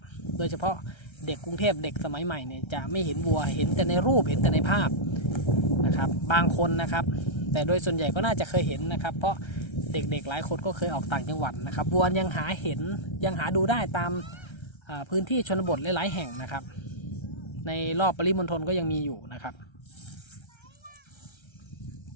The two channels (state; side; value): late; right; 1.3 ms